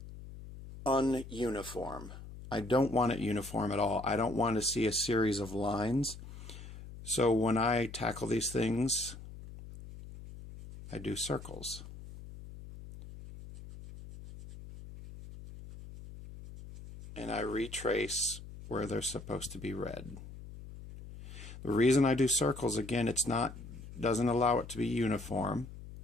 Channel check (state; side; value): noise; left; hum, 14 dB below the sound